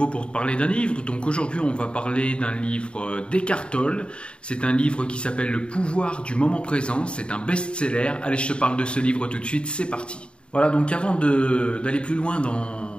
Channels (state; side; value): late; right; 0.055 ms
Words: pour te parler d'un livre. Donc aujourd'hui, on va parler d'un livre d'Eckhart Tolle. C'est un livre qui s'appelle Le pouvoir du moment présent. C'est un best-seller. Allez, je te parle de ce livre tout de suite, c'est parti. Voilà, donc avant d'aller plus loin